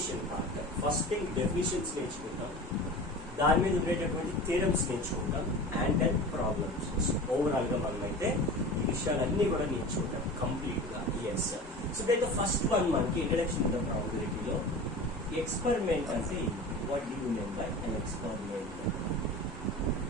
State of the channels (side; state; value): both; normal; correlation 0.35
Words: part. First thing definitions నేర్చుకుంటాం, దాని మీద ఉండేటటువంటి థియరమ్స్ నేర్చుకుంటాం, అండ్ దెన్ ప్రాబ్లమ్స్. ఓవరాల్ గా మనం అయితే ఈ విషయాలన్నీ కూడా నేర్చుకుంటాం కంప్లీట్ గా. Yes so that first one మనకి ఇంట్రడక్షన్ టు ద ప్రాబబిలిటీలో ఎక్స్పెరిమెంట్ అంటే what do you mean by an experiment